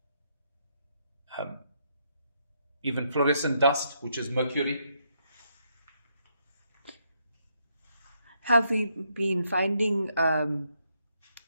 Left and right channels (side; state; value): both; inverted; correlation -0.76